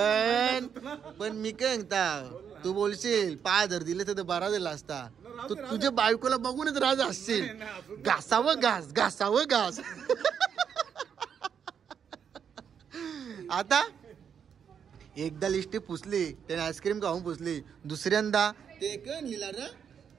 पण मी काय सांगता, तू बोलशील 5000 दिले तर बरा दिला असता. तू तुझ्या बायकोला बघूनच राज असशील. घासावं घास. आता एकदा लिस्टी पुसली, त्याने आईस्क्रीम खाऊन पुसली. दुसऱ्यांदा ते कण लिहिला ना,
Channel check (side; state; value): left; quieter; 7.6 dB